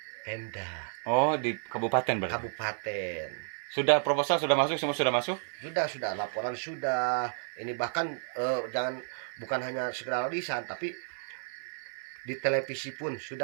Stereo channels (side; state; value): left; silent; digital silence